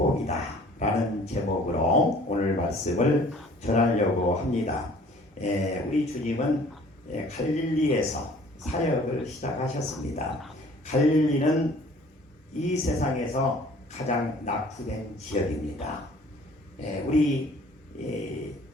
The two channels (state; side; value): normal; both; correlation 0.52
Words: 라는 제목으로 오늘 말씀을 전하려고 합니다. 우리 주님은 갈릴리에서 사역을 시작하셨습니다. 갈릴리는 이 세상에서 가장 낙후된 지역입니다.